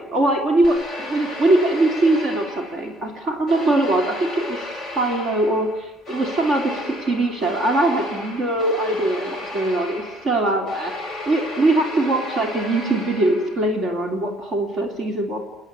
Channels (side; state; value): both; normal; correlation 0.64